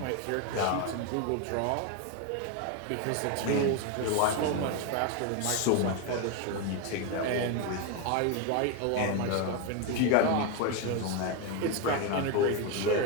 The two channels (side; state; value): both; different; correlation 0.02